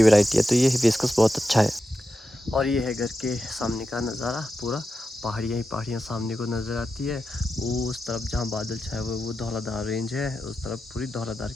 वैरायटी है। तो ये हिबिस्कस बहुत अच्छा है। और ये है घर के सामने का नज़ारा, पूरा पहाड़ियाँ ही पहाड़ियाँ सामने को नज़र आती है। वो उस तरफ जहाँ बादल छाए हुए वो धौलाधार रेंज है, उस तरफ पूरी धौलाधार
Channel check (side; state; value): both; normal; correlation 0.90